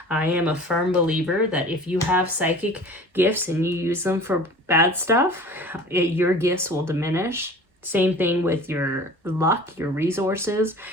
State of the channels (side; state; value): both; normal; correlation 0.42